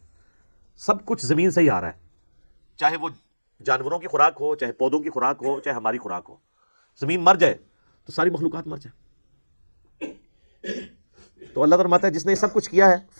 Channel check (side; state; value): both; inverted; correlation -1.00